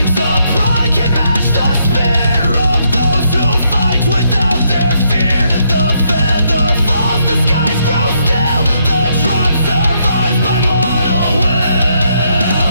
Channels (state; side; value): inverted; both; correlation -0.75